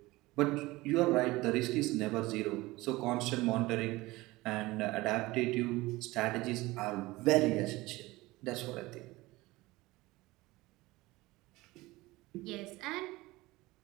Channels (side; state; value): left; quieter; 20.3 dB